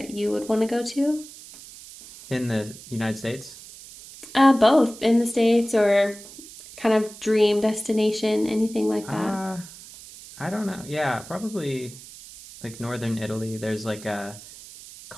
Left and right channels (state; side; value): noise; right; hiss, 17 dB below the sound